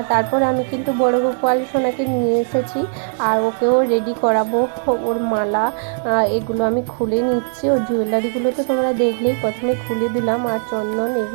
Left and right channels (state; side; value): silent; left; 67 dB below the other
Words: তারপর আমি কিন্তু বড় গোপাল সোনাকে নিয়ে এসেছি, আর ওকেও রেডি করাবো। ওর মালা এগুলো আমি খুলে নিচ্ছি, ওর জুয়েলারিগুলো তো তোমরা দেখলেই, প্রথমে খুলে দিলাম, আর চন্দন